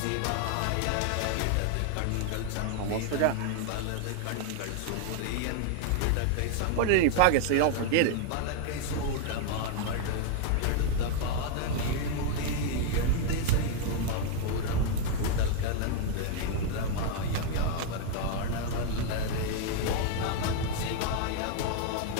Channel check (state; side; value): different; both; correlation 0.00